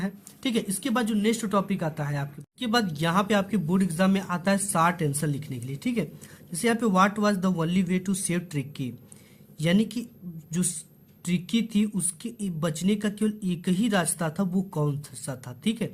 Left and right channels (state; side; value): identical; both; correlation 1.00